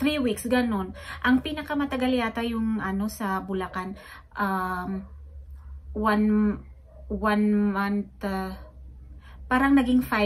weeks, ganon. Ang pinakamatagal yata yung sa Bulacan, 1 month, parang naging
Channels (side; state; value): both; identical; correlation 1.00